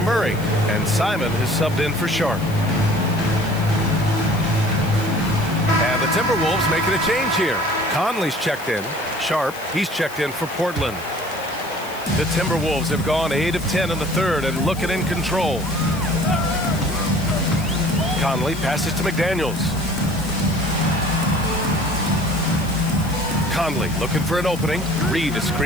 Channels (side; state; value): left; noise; hiss, 17 dB below the sound